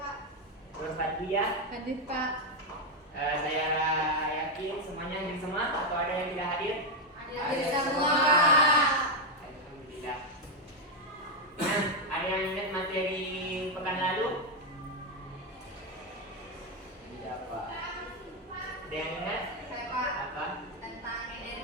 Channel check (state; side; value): normal; both; correlation 0.04